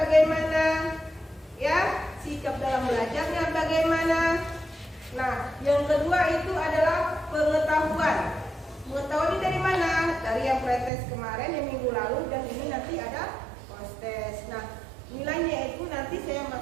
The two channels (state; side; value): drops out; left; at 10.9 s